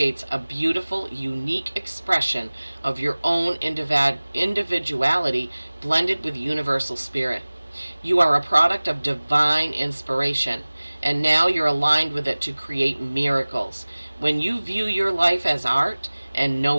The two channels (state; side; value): inverted; both; correlation -1.00